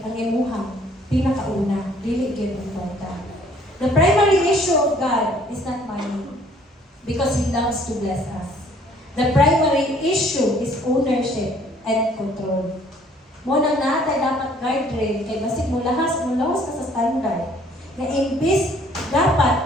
ang imuhang pinakauna, dili gyud ang kwarta. The primary issue of God is not money because He loves to bless us. The primary issue is ownership and control. Mo nang natay dapat guardrail kay basig mo lahas ka sa standard. Na imbis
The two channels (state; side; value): normal; both; correlation 0.59